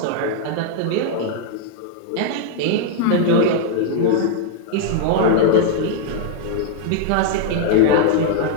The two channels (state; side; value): different; both; correlation -0.01